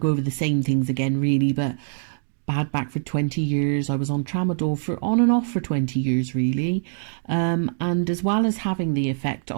to go over the same things again really, but bad back for 20 years. I was on tramadol for on and off for 20 years really, and as well as having the effect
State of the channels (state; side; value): silent; left; digital silence